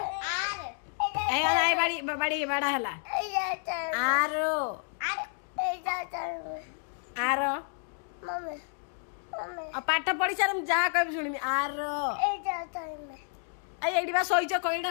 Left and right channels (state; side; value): silent; right; digital silence